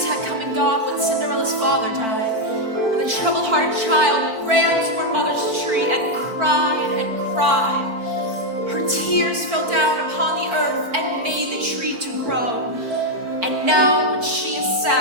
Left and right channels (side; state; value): left; late; 4.5 ms